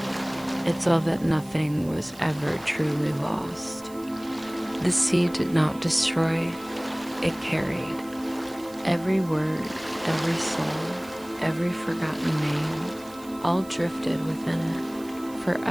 it saw that nothing was ever truly lost. The sea did not destroy, it carried. Every word, every soul, every forgotten name, all drifted within it,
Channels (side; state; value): right; noise; hiss, 21 dB below the sound